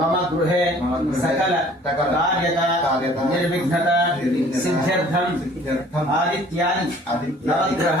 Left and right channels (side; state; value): both; normal; correlation 0.53